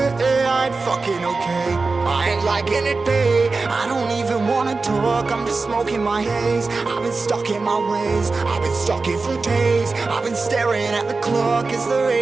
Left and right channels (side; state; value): left; quieter; 3.9 dB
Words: I ain't fucking okay, I ain't liking it, babe. I don't even wanna talk, I'm just smoking my haze. I've been stuck in my ways, I've been stuck here for days. I've been staring at the clock as the